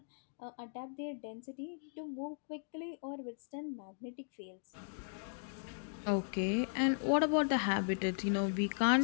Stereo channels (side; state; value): right; silent; digital silence